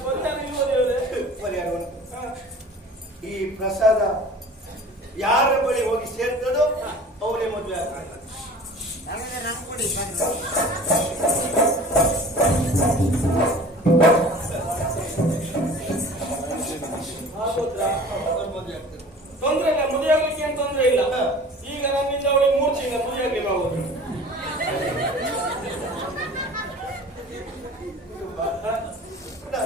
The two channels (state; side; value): normal; both; correlation 0.43